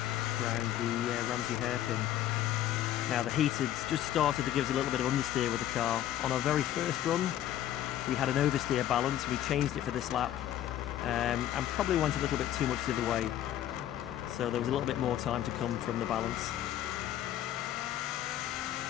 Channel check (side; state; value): right; quieter; 12.0 dB